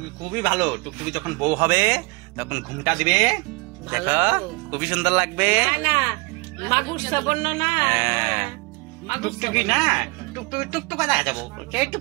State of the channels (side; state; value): left; quieter; 27.8 dB